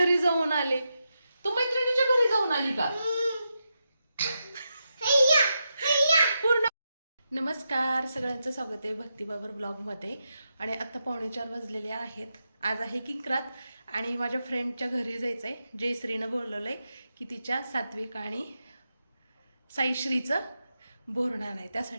जाऊन आले. तू मैत्रिणीच्या घरी जाऊन आली का? पूर्ण. नमस्कार, सगळ्यांचं स्वागत आहे भक्तिबाबर ब्लॉगमध्ये. आणि आता 3:45 वाजलेले आहेत. आज आहे किंक्रात आणि माझ्या फ्रेंडच्या घरी जायचं आहे. जयश्रीनं बोलवलं आहे की तिच्या सात्विक आणि साईश्रीचं बोरणार आहे,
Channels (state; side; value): inverted; both; correlation -0.87